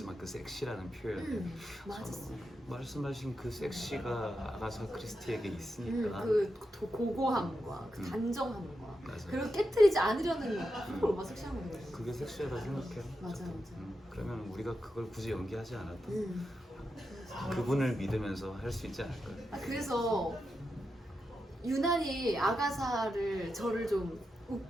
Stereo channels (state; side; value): normal; both; correlation 0.87